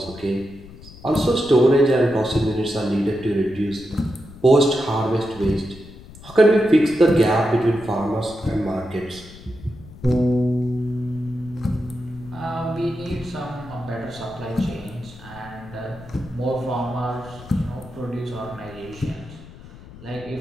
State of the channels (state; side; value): noise; left; rumble, 18 dB below the sound